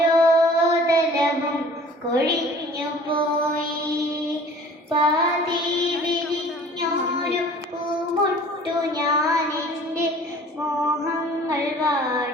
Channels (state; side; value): normal; both; correlation 0.48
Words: തലവും കൊഴിഞ്ഞു പോയി. പാതി വിരിഞ്ഞോരു പൂമൊട്ടു ഞാനെൻ്റെ മോഹങ്ങൾ